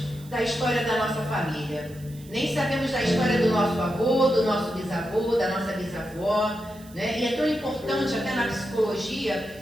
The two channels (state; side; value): noise; right; hiss, 23 dB below the sound